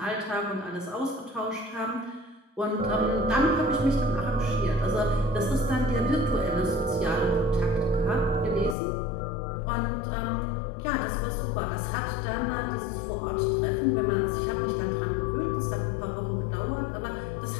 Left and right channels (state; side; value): drops out; right; at 8.8 s